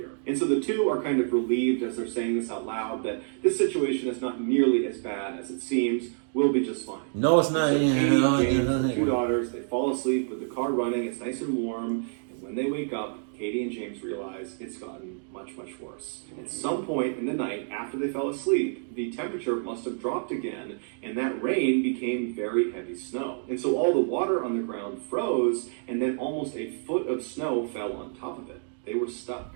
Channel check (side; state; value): left; silent; digital silence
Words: And so the two are kind of relieved as they're saying this out loud, that this situation is not nearly as bad as it seems. We'll be just fine. No, it's not. So Katie, James, and 2 daughters, they fall asleep with the car running, it's nice and warm, and when they wake up, Katie and James realize it's gotten much, much worse. At some point in the night, after they fell asleep, the temperature must have dropped again, and that rain became very heavy snow. And so all the water on the ground froze, and then almost a foot of snow fell on top of it. They were stuck.